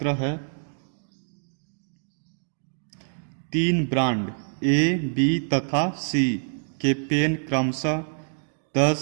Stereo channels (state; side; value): silent; left; 57 dB below the other